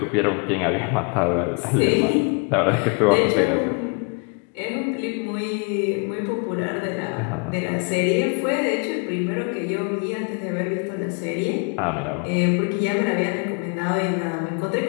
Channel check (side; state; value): right; quieter; 35.6 dB